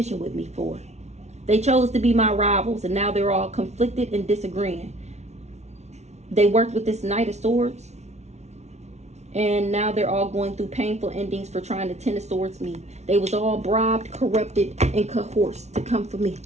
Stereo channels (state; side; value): late; left; 0.32 ms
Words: with me for. They chose to be my rivals, and now they're all conflicted and disagreeing. They worked with this Knight of Swords, and now they're all going through painful endings for trying to Ten of Swords me. They was all bribed, corrupted, and coerced to come for me.